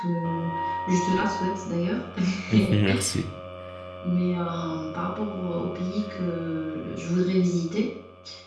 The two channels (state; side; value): identical; both; correlation 1.00